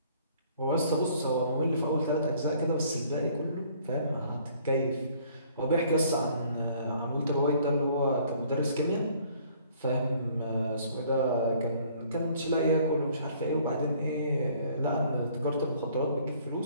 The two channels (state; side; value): inverted; both; correlation -0.59